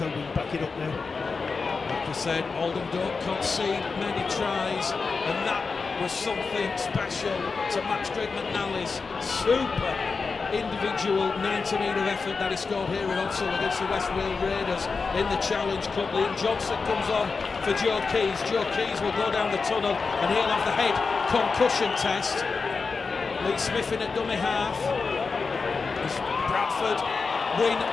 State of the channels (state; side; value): quieter; right; 4.6 dB